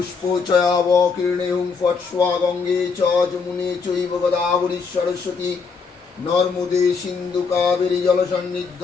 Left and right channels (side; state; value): right; quieter; 5.1 dB